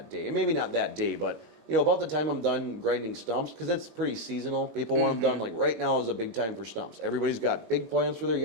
day. And maybe not that day, but you know, about the time I'm done grinding stumps, because it's pretty seasonal. People want them done, like right now is a big time for stumps. Everybody's got big plans for their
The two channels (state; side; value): late; left; 21 ms